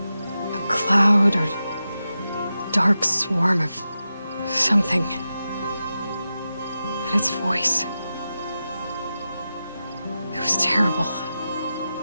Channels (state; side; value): inverted; both; correlation -0.91